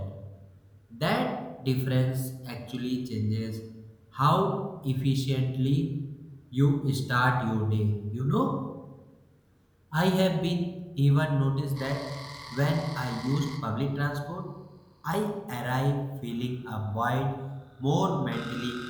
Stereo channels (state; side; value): identical; both; correlation 1.00